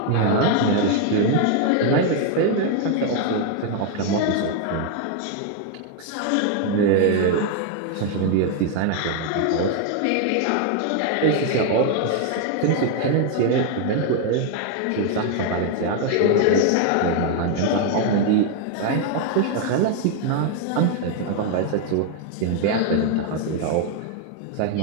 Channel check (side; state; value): both; different; correlation 0.00